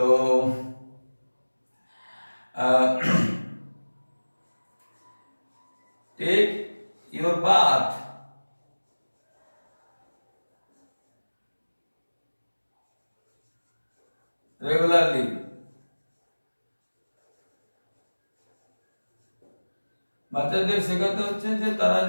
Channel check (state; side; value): inverted; both; correlation -1.00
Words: take your bath regularly. বাচ্চাদের শেখাতে হচ্ছে যে তারা